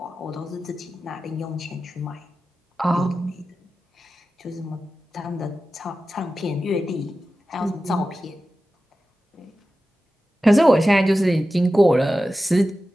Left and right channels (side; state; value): both; normal; correlation 0.94